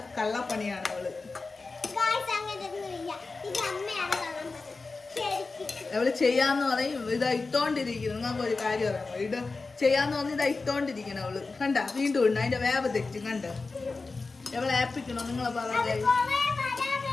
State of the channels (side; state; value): right; quieter; 3.9 dB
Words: കള്ളപ്പണിയാണ് അവള്. അവള് ചെയ്യാന്ന് പറയും ഇതാ ഇട്ടോണ്ടിരിക്കുന്നു. നിങ്ങൾക്ക് ഒരു കാര്യം അറിയാമോ? ഇത് ചെയ്യാന്ന് പറഞ്ഞ് ഇതാ ഇട്ടോണ്ടിരിക്കണം അവള്. കണ്ട വീണ്ടും ഉണ്ട്, അതിന്റെ വേവ് തെറ്റും. കണ്ട എവളെ ഏപ്പിക്കണോ നിങ്ങളെ പറഞ്ഞ?